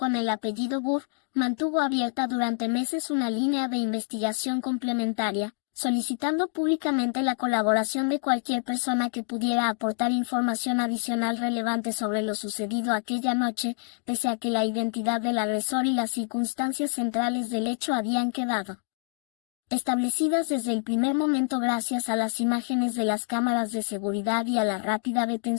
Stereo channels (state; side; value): silent; right; digital silence